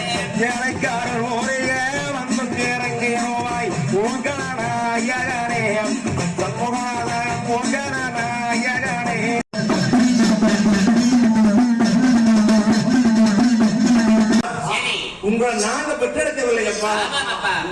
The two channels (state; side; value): identical; both; correlation 1.00